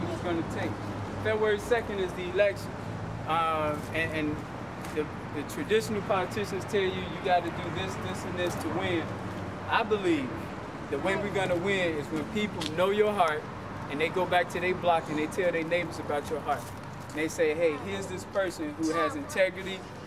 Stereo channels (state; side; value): identical; both; correlation 1.00